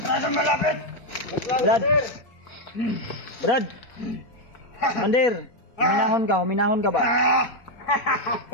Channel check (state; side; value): late; right; 4.7 ms